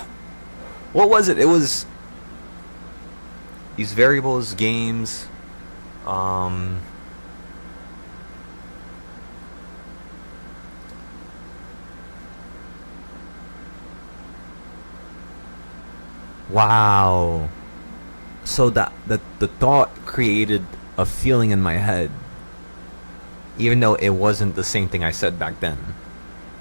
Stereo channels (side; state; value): both; inverted; correlation -1.00